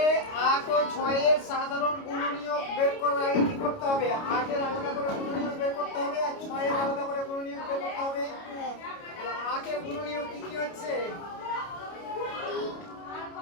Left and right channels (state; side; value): late; right; 29 ms